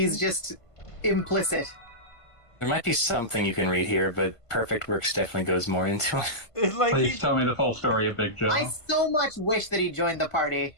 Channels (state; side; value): late; right; 1.5 ms